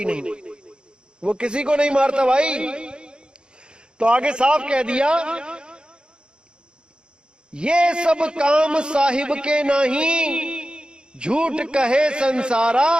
नहीं। वो किसी को नहीं मारता भाई। तो आगे साफ कह दिया, ये सब काम साहिब के नहीं, झूठ कहे संसारा।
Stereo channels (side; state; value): left; late; 0.050 ms